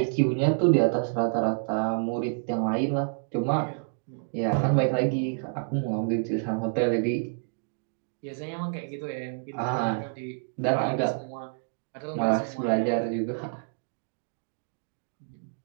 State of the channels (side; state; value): left; silent; digital silence